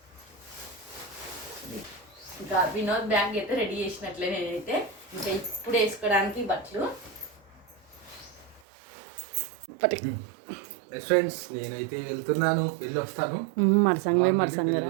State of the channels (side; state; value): left; drops out; at 8.6 s